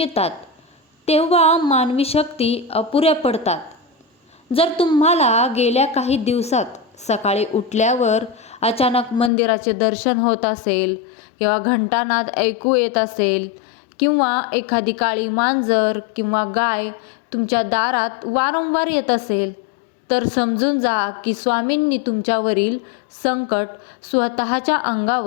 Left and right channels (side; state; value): right; drops out; at 9.3 s